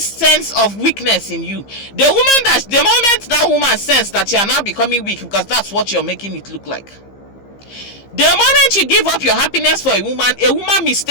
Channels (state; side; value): late; right; 15 ms